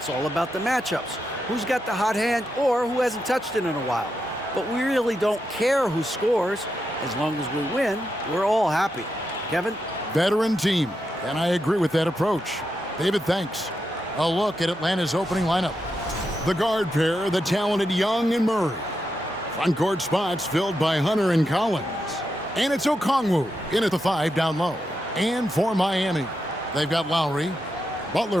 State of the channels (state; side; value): normal; both; correlation 0.85